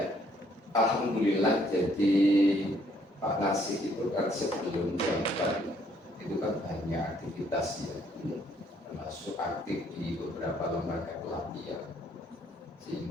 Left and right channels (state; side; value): normal; both; correlation 0.66